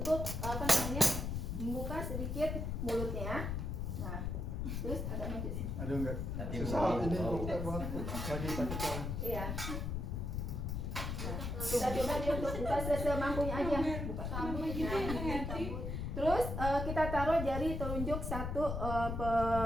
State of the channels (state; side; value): noise; left; rumble, 3 dB below the sound